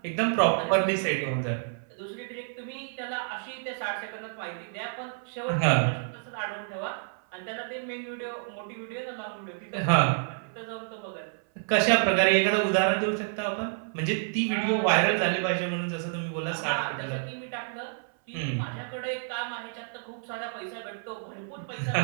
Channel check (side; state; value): left; silent; 58 dB below the other